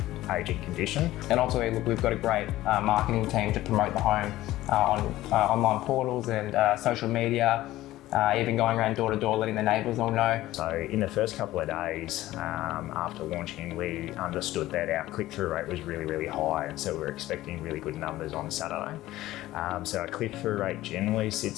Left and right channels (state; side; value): quieter; right; 15.9 dB